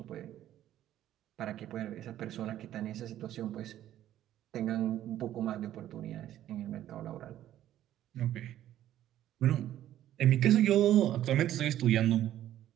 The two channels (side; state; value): left; quieter; 12.4 dB